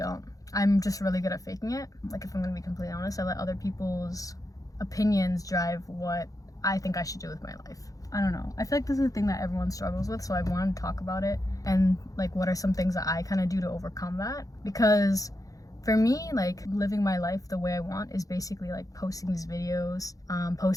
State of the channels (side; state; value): right; late; 0.17 ms